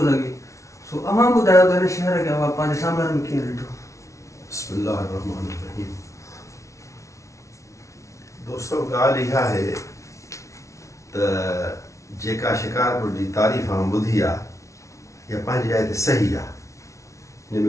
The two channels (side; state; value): right; late; 0.14 ms